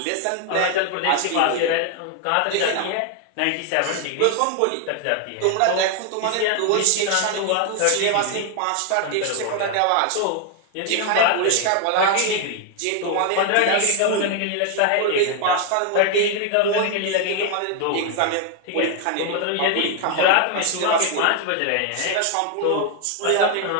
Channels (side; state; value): both; different; correlation 0.00